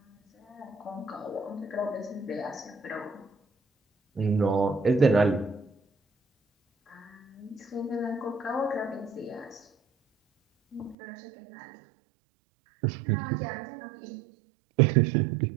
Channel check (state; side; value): drops out; left; at 11.0 s